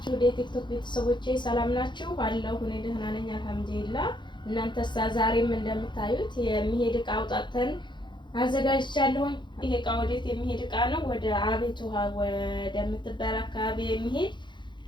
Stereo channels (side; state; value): right; late; 0.23 ms